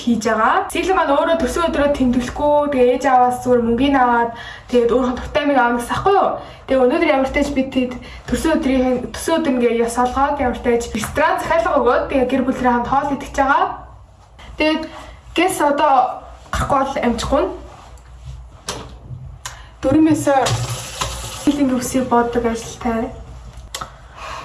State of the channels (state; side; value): identical; both; correlation 1.00